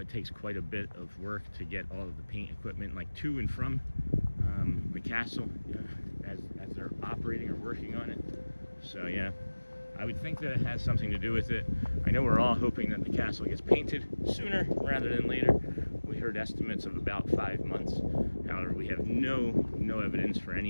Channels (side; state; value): both; inverted; correlation -1.00